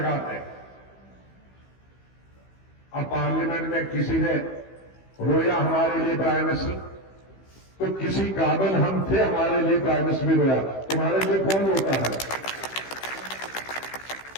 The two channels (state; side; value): late; right; 15 ms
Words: हैं। अब पार्लियामेंट में किसी ने रोया हमारे लिए प्राइम मिनिस्टर, तो किसी काबिल हम थे, हमारे लिए प्राइम मिनिस्टर भी रोया। तुम्हारे लिए कौन रोता है?